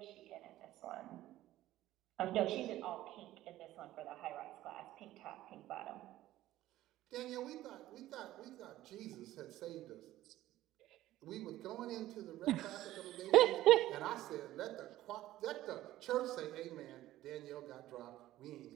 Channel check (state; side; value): quieter; left; 14.8 dB